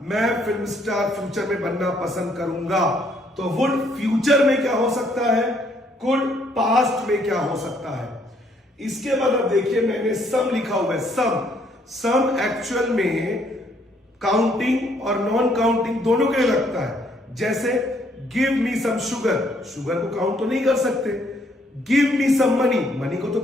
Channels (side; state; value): both; normal; correlation 0.68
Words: मैं फिल्म स्टार फ्यूचर में बनना पसंद करूंगा। तो वुड फ्यूचर में क्या हो सकता है, कुड पास्ट में क्या हो सकता है। इसके बाद अब देखिए मैंने सम लिखा हुआ है। सम एक्चुअल में काउंटिंग और नॉन काउंटिंग दोनों के लिए लगता है। जैसे give me some sugar, sugar को काउंट तो नहीं कर सकते। Give me some money, money को तो